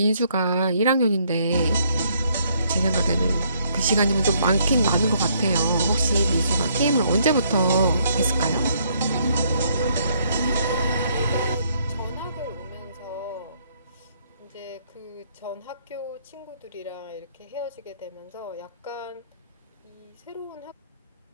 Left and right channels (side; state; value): both; inverted; correlation -0.69